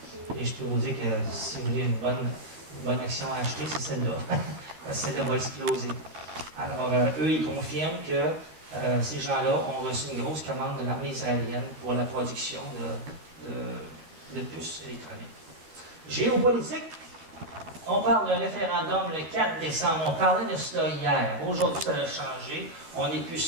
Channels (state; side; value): late; left; 12 ms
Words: Et je peux vous dire que si vous voulez une bonne action à acheter, c'est celle-là. Celle-là va exploser. Alors, eux, ils confirment que ces gens-là ont reçu une grosse commande de l'armée israélienne pour la production de puces électroniques. Géopolitique. On parle d'un référendum le 4 décembre. On parlait de cela hier. Aujourd'hui, ça a changé. On n'est plus